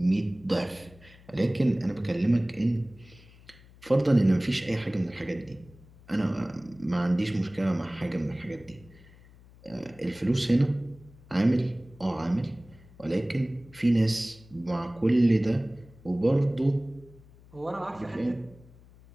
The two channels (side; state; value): left; noise; hum, 24 dB below the sound